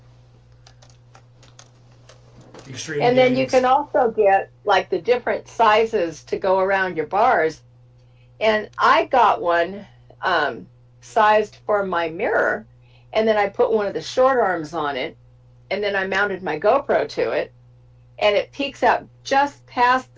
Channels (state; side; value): identical; both; correlation 1.00